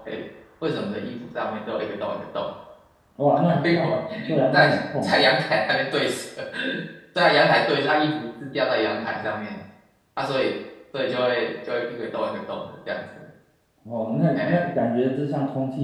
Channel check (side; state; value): both; identical; correlation 1.00